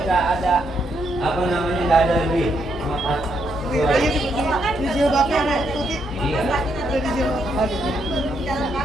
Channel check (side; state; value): both; normal; correlation 0.77